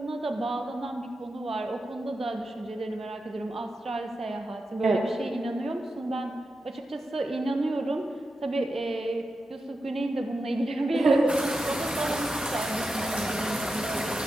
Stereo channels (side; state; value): both; normal; correlation 0.89